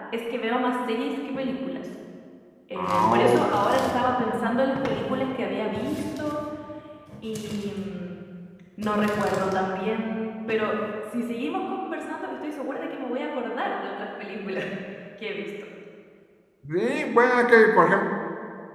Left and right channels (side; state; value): both; identical; correlation 1.00